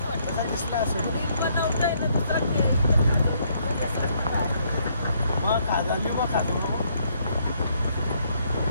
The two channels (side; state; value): both; inverted; correlation -0.70